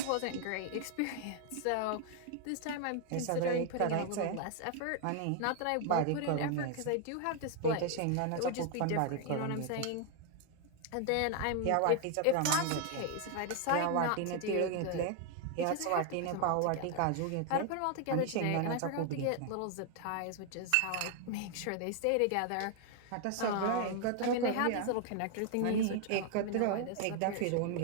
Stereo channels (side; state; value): both; different; correlation 0.00